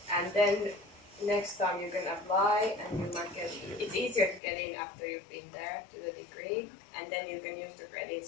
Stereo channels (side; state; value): right; drops out; at 4.4 s